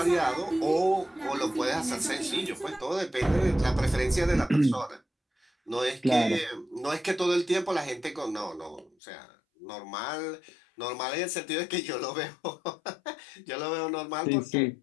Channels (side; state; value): right; drops out; at 8.9 s